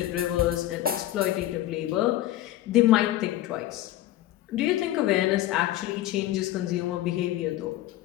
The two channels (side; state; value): right; quieter; 14.4 dB